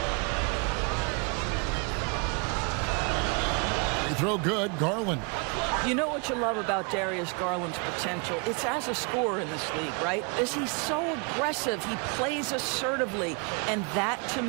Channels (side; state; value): left; quieter; 34.3 dB